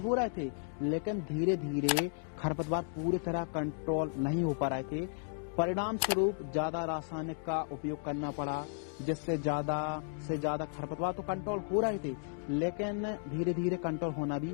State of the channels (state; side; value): silent; right; digital silence